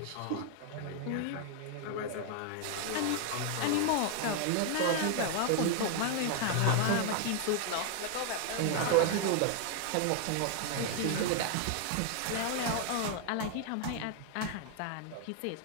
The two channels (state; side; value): different; both; correlation 0.00